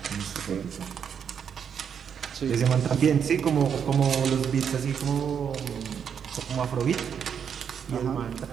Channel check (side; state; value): left; quieter; 7.6 dB